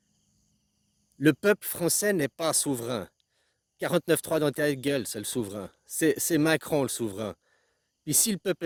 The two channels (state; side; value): identical; both; correlation 1.00